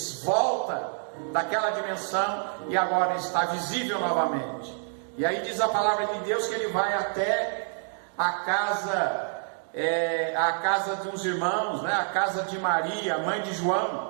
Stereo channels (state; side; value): silent; left; 60 dB below the other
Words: volta daquela dimensão e agora está visível novamente. E aí diz a palavra de Deus que ele vai até a casa de uns irmãos, né? A casa de Maria, mãe de